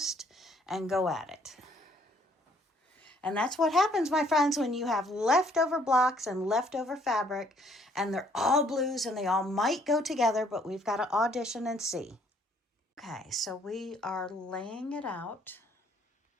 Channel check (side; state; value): both; normal; correlation 0.64